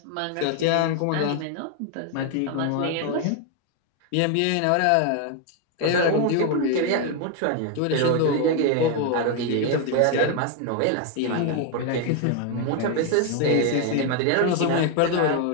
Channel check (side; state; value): both; different; correlation 0.01